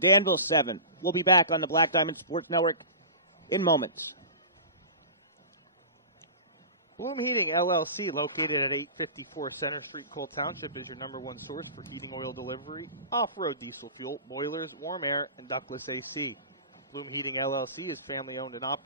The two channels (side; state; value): both; inverted; correlation -0.34